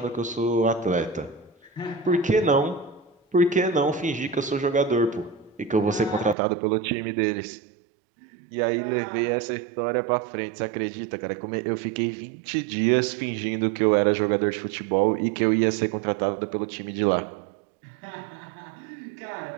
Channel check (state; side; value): drops out; left; at 6.4 s